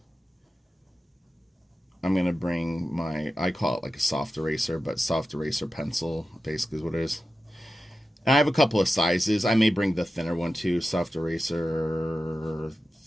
I'm going to bring I call it like a soft eraser, but soft eraser pencil basically is what it is. And I have a couple of sizes. I may bring the thinner one too, soft eraser,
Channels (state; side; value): normal; both; correlation 0.93